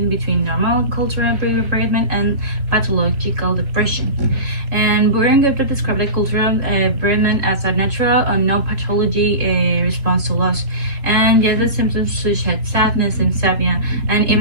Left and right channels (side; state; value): left; late; 3.5 ms